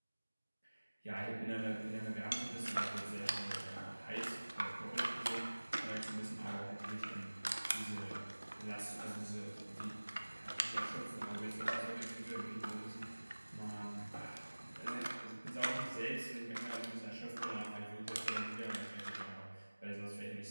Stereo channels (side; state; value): both; inverted; correlation -1.00